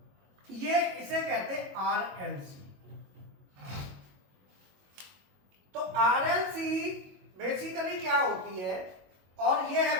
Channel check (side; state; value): left; late; 22 ms